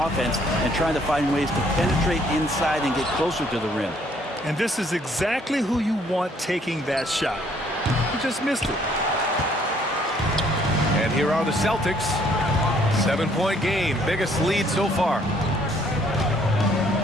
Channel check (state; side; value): normal; both; correlation 0.64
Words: offense and trying to find ways to penetrate inside and get closer to the rim. And this is exactly who you want taking that shot. He just missed it. And here are the Celtics. 7-point game. Biggest lead so far.